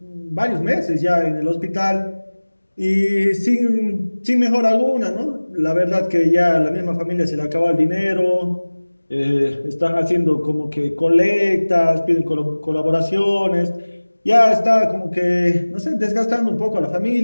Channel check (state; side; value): inverted; both; correlation -1.00